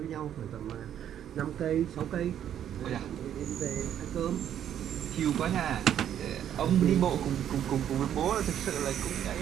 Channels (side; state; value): left; quieter; 10.1 dB